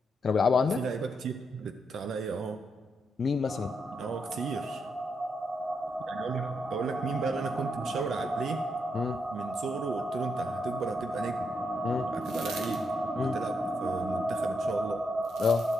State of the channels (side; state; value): both; normal; correlation 0.81